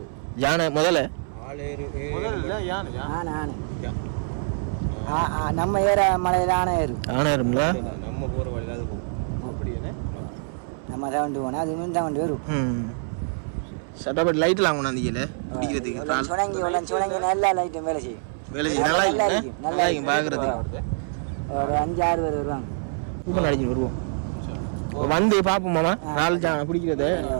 யானை முதல்ல நம்ம ஏற மலையில் ஆனை ஏறும். யானை ஏறும்ல? நம்ம போகிற வழியில் அது போகும். அப்படியே நம்ம தவண்டு போனால் அது இன்னும் தவண்டு வரும். சட்டப்பட்டு லைட்லாம் கொண்டாந்தீங்கல்ல குடிக்கிறதுக்கு? சுணங்கி நல்லா லைட்டும் வேலை செய்யும். வேலை செய்யும். நல்லா இருக்கும், நல்லா இருக்கும் பார்க்குறதுக்கு. ஒரு 5-6 பேர் வருவாங்க. கூட்டம் அடிச்சு வருவோம். வந்து பார்ப்போம் மாமா. 4 ஜானை பிடிக்கிறது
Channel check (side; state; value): left; silent; 62 dB below the other